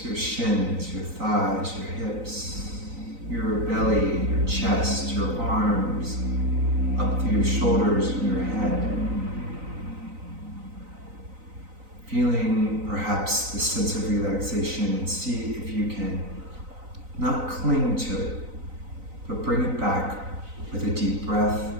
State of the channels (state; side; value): late; left; 3.9 ms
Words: your shins, your thighs, your hips, your belly, your chest, your arms, up through your shoulders and your head. Feeling perhaps the sense of relaxation, and see if you can not cling to it, but bring it back with a deep breath